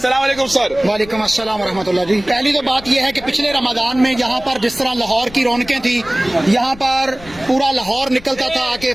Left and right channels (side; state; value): left; noise; rumble, 19 dB below the sound